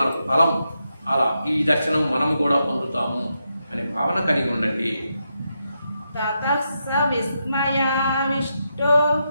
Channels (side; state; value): both; inverted; correlation -0.84